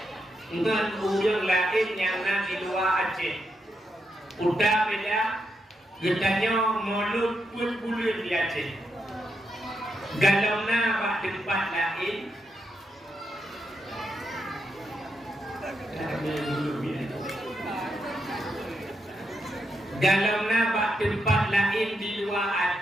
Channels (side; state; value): both; normal; correlation 0.83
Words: dengan orang lain yang Nabi luar Aceh. Udah beda gedanya Maulid pun bulan di Aceh. Kalau nak tempat lain dalam nama tempat lain di luar